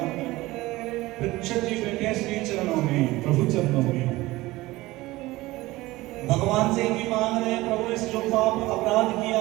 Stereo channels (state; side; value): quieter; left; 19.1 dB